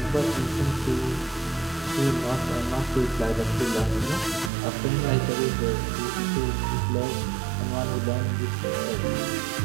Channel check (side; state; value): left; drops out; at 4.5 s